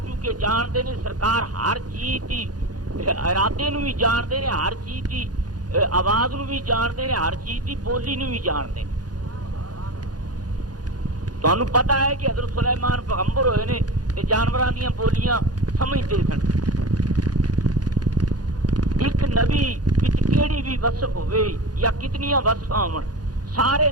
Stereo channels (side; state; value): left; late; 0.69 ms